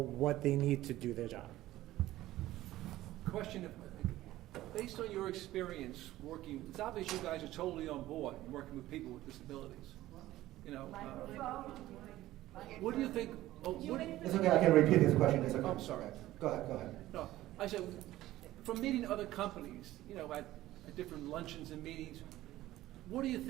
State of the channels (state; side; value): quieter; left; 15.6 dB